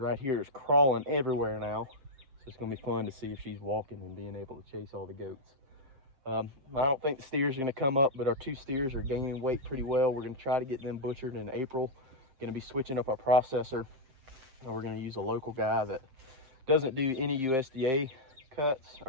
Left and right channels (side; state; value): left; late; 7.7 ms